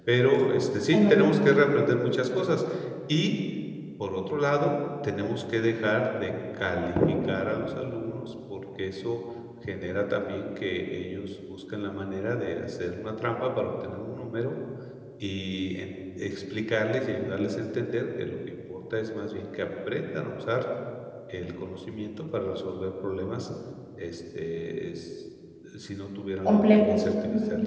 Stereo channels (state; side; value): identical; both; correlation 1.00